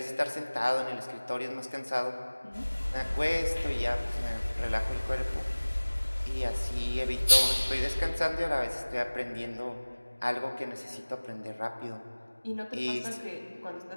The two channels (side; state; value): both; inverted; correlation -1.00